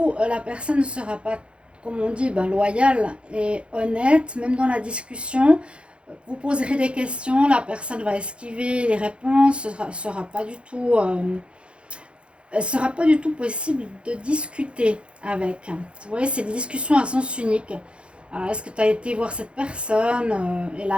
la personne ne sera pas, comme on dit, loyale et honnête. Même dans la discussion, vous poserez des questions, la personne va esquiver les réponses. Ce sera pas du tout... sera pas du tout possible de discuter avec. Vous voyez, c'est des discussions à sens unique. Est-ce que tu as été voir cette personne et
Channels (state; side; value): late; left; 0.058 ms